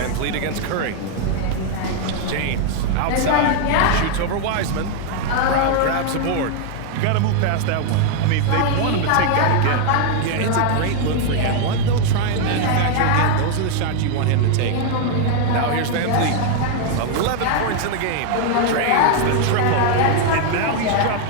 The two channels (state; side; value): different; both; correlation 0.00